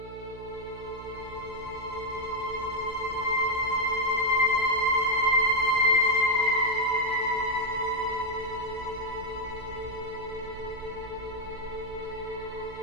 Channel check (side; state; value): right; noise; hum, 16 dB below the sound